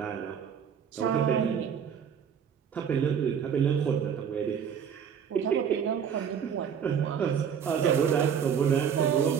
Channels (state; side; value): quieter; left; 7.7 dB